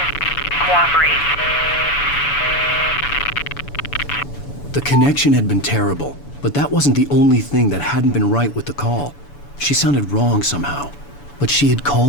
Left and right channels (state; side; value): late; right; 7.0 ms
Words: Cooperate. The connection had been terrible, but that wasn't the only thing that hadn't been right with the call. She sounded wrong somehow, but she had